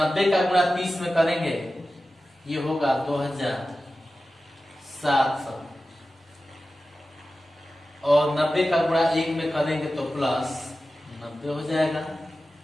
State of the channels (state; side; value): normal; both; correlation 0.94